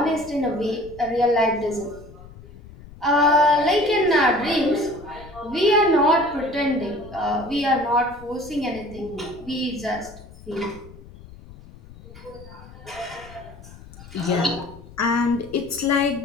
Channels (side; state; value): left; noise; rumble, 19 dB below the sound